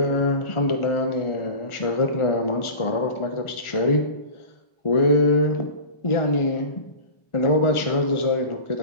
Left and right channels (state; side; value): late; right; 1.4 ms